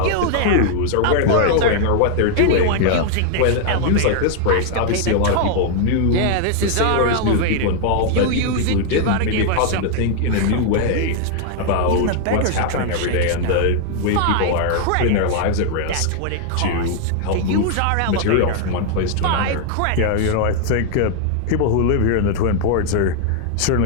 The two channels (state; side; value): different; both; correlation 0.00